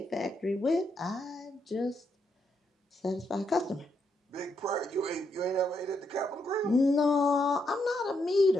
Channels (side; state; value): both; normal; correlation 0.79